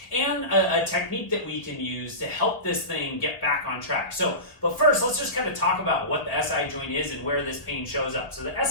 and a technique that we can use to help this thing get back on track. But first, let's just kind of talk about what the SI joint is and where this pain shows up. So the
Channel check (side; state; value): right; late; 1.8 ms